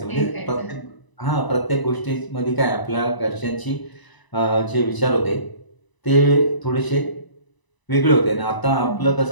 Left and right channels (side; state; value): right; late; 1.0 ms